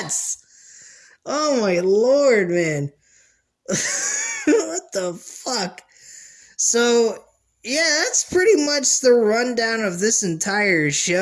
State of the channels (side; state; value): both; identical; correlation 1.00